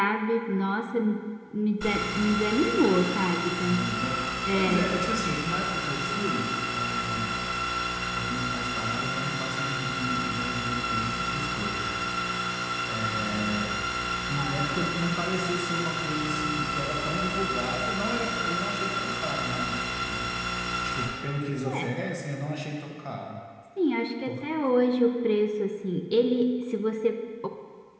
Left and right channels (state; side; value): identical; both; correlation 1.00